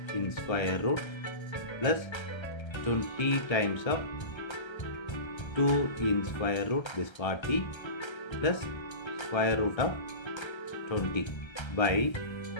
in square root plus 20 times of 2 in square root, this 40 plus square root of 20 by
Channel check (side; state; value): right; late; 1.3 ms